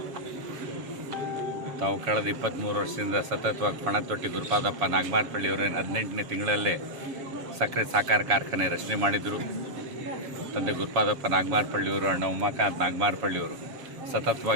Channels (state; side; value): late; left; 7.0 ms